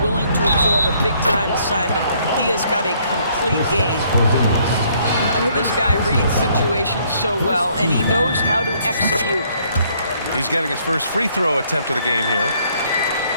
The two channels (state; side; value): inverted; both; correlation -0.66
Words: willing to absorb a big-time assignment. He has got a complete game. This guy reads situations so well, and he knows how to execute. He's getting his first free throw attempt of the game here.